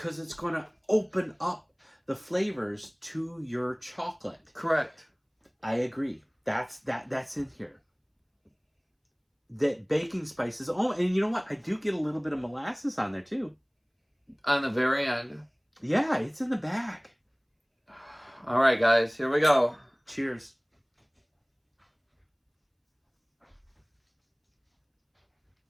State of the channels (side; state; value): both; identical; correlation 1.00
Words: it's going to open up the flavors to your chocolate. Correct. I agree. That's in here. That baking spices. Oh, and you know what? I do get a little bit of molasses on there too. On the very end. Yeah, it's in the back. All right, guys, here we go. Cheers.